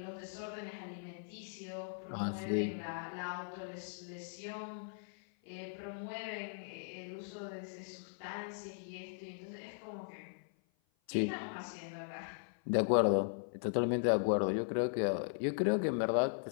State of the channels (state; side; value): silent; right; 52 dB below the other